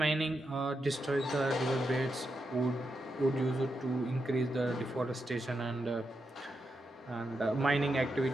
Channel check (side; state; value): both; normal; correlation 0.85